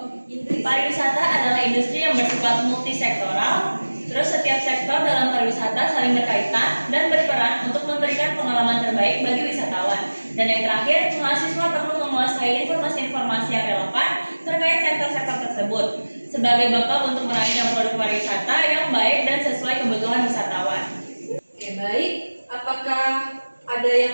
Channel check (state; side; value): inverted; both; correlation -1.00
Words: Pariwisata adalah industri yang bersifat multisektoral. Terus setiap sektor dalam pariwisata saling berkaitan dan berperan untuk memberikan pengalaman terbaik bagi wisatawan. Dan yang terakhir, mahasiswa perlu menguasai informasi-informasi yang relevan terkait sektor-sektor tersebut sebagai bekal untuk merancang produk pariwisata yang baik dan sesuai kebutuhan wisatawan. Oke, baik. Apakah ada